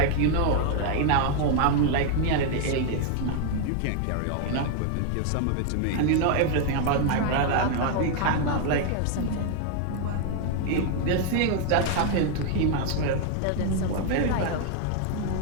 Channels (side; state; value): both; different; correlation 0.00